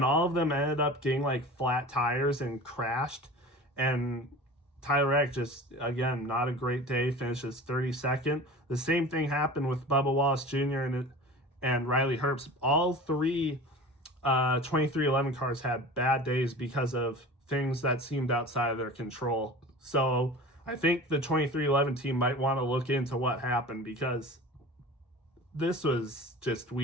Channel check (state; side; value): normal; both; correlation 0.37